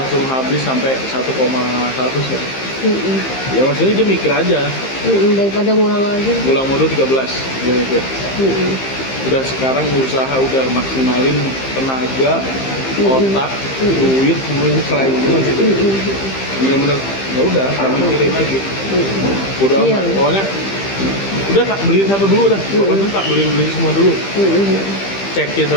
habis sampai 1,1 ya. Ya maksudnya dia mikir aja. Daripada ngulang lagi. Pulang modul 13 dia mikir. Udah sekarang usaha udah maksimalin tenaga, otak, duit, semuanya serahin semua gitu. Bener-bener ya udah, gak mikirin lagi. Udah Iya. amat. Pokoknya udah tak beliin satu dulu dah. Pokoknya tak beliin semua dulu. Cekin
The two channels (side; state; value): right; late; 15 ms